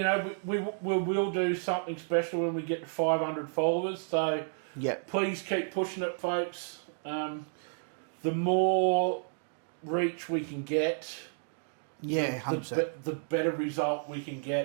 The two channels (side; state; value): left; silent; digital silence